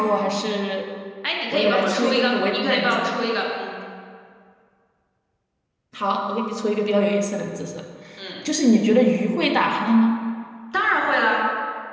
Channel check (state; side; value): identical; both; correlation 1.00